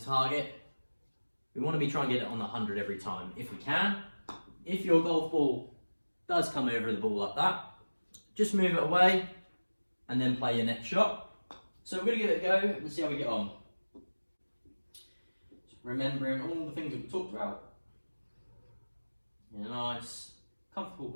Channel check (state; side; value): inverted; both; correlation -1.00